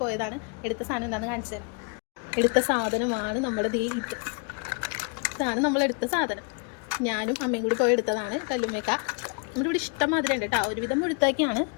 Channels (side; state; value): right; quieter; 36.3 dB